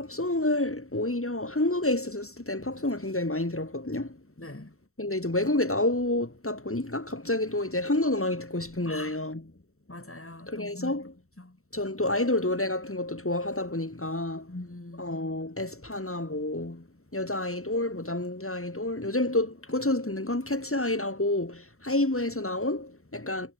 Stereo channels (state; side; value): late; right; 0.63 ms